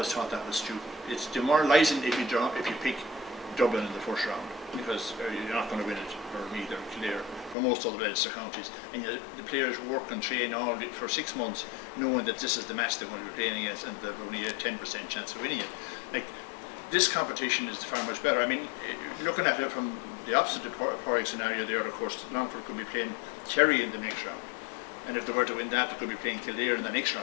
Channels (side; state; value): right; drops out; at 7.6 s